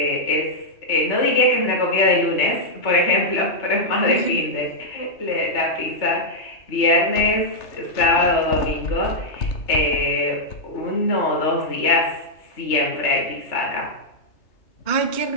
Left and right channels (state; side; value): late; right; 3.3 ms